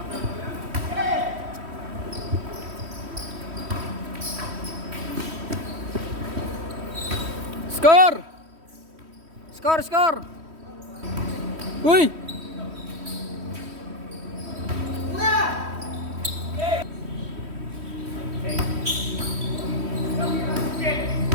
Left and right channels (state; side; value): late; left; 3.1 ms